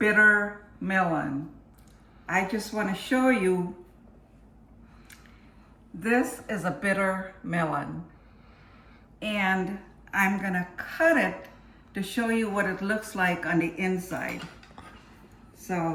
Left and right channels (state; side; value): identical; both; correlation 1.00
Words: melon. I just want to show you, this is a bitter melon and I'm going to cut it to show you what it looks like on the inside.